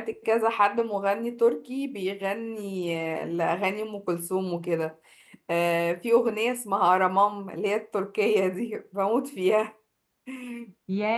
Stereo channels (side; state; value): both; identical; correlation 1.00